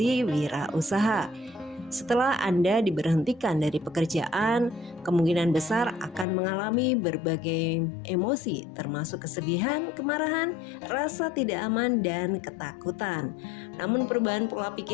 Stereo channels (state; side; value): drops out; right; at 6.2 s